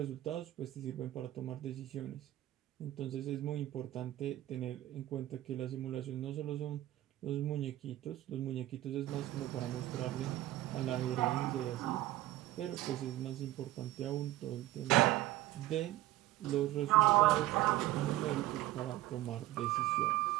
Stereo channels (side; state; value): left; quieter; 15.7 dB